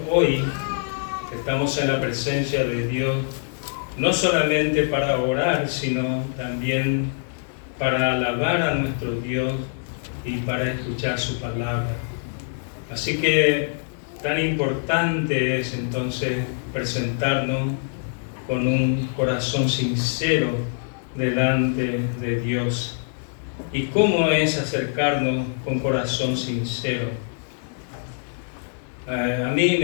hoy estamos en la presencia de Dios no solamente para orar, sino también para alabar a nuestro Dios y para escuchar su palabra. Así que tan importante es entonces presentarnos con un corazón sincero delante de Dios. ¿Y cómo es acercarnos con corazón sincero? A mí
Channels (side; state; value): right; silent; digital silence